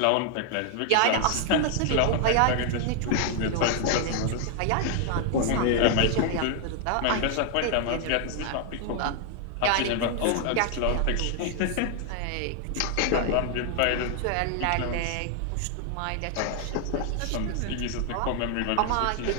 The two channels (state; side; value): different; both; correlation 0.00